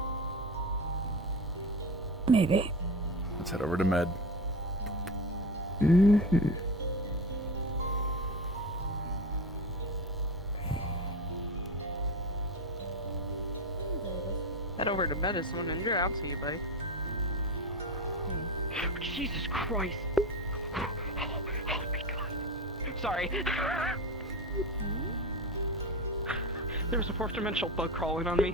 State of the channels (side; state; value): both; normal; correlation 0.24